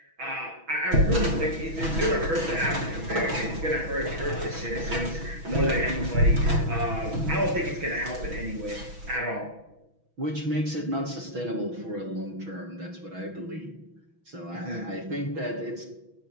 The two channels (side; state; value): left; late; 6.1 ms